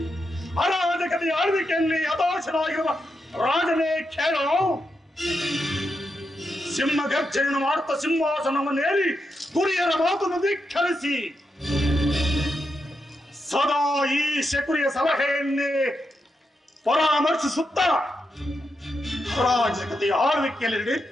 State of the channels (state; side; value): normal; both; correlation 0.85